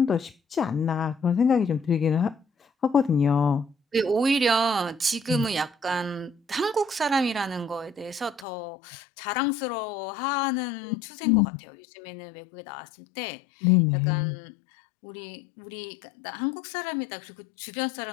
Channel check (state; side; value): drops out; right; at 8.5 s